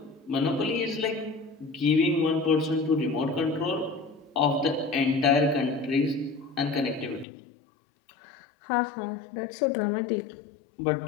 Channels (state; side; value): drops out; right; at 7.2 s